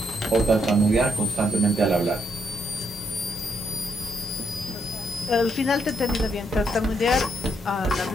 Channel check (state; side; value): normal; both; correlation 0.76